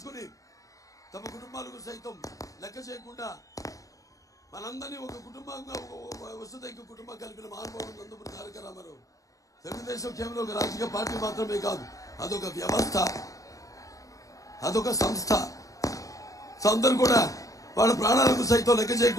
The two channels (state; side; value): late; right; 0.16 ms